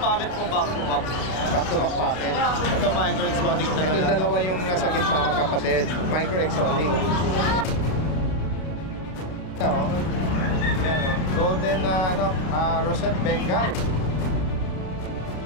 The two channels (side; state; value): right; late; 32 ms